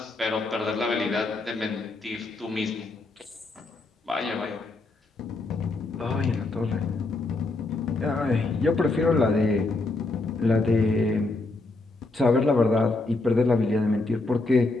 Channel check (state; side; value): quieter; right; 3.2 dB